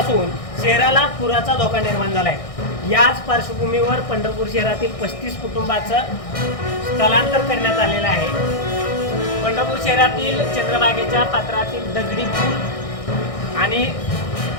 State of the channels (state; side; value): late; right; 1.6 ms